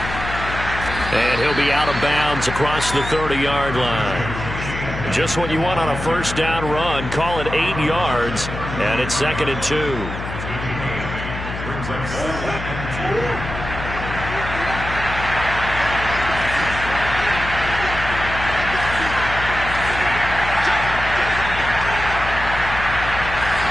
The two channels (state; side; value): noise; left; hum, 8 dB below the sound